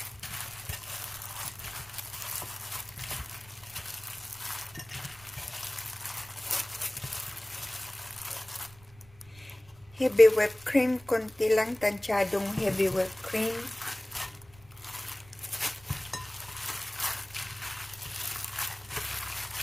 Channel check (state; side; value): noise; right; rumble, 24 dB below the sound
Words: Heavy whipped cream, konti lang, tansyadong heavy whipped cream.